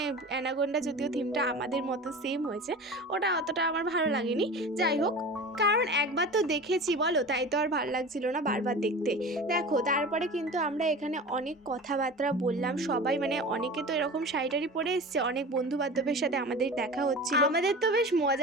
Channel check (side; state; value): both; normal; correlation 0.34